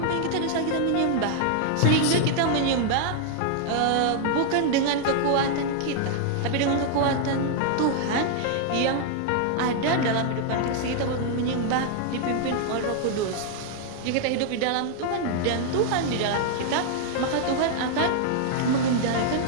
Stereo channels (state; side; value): different; both; correlation 0.00